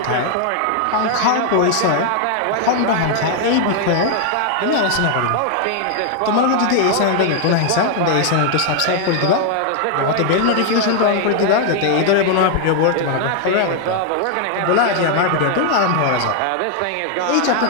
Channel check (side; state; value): both; different; correlation 0.00